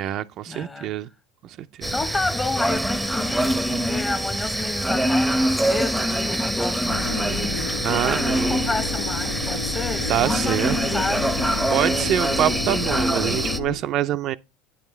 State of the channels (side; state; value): both; normal; correlation 0.75